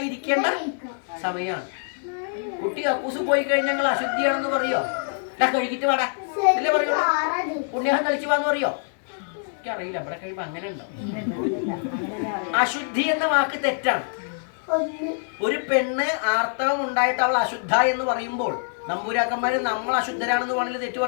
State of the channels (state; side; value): silent; right; digital silence